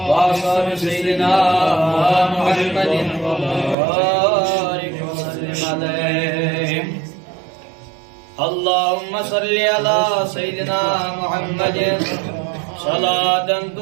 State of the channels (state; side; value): drops out; left; at 3.8 s